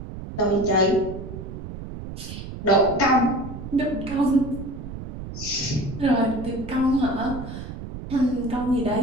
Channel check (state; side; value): noise; right; rumble, 10 dB below the sound